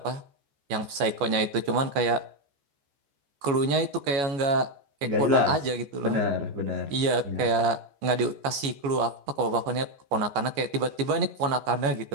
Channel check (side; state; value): left; late; 14 ms